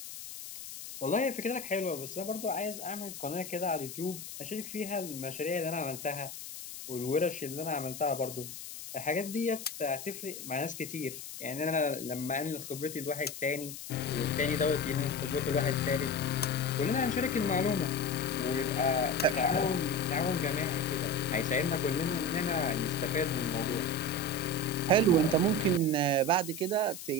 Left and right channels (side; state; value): left; noise; hiss, 10 dB below the sound